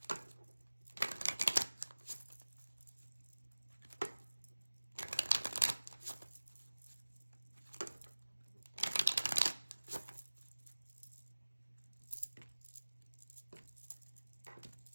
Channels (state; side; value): inverted; both; correlation -1.00